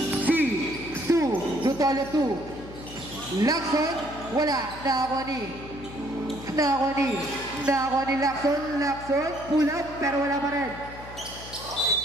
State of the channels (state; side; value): noise; left; hum, 15 dB below the sound